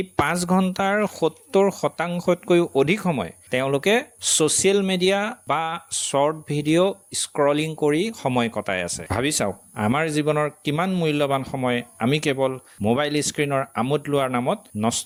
5 ঘণ্টাৰ 70%তকৈও অধিক সময় তেওঁলোকে ছ'চিয়েল মিডিয়া বা শ্বৰ্ট ভিডিঅ' স্ক্ৰলিং কৰি সময় কটাই আছে ভাবি চাওক আমাৰ জীৱনৰ কিমান মূল্যৱান সময় আমি কেৱল মোবাইল স্ক্ৰীনৰ আমোদ লোৱাৰ নামত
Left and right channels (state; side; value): identical; both; correlation 1.00